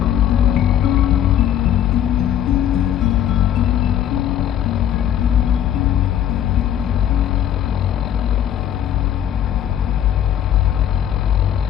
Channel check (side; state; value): right; quieter; 10.5 dB